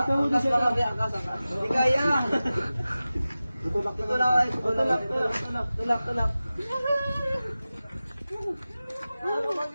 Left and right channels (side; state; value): both; inverted; correlation -0.96